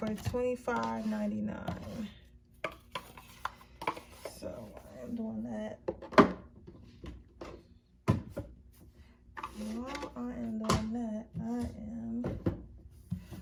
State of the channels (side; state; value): both; identical; correlation 1.00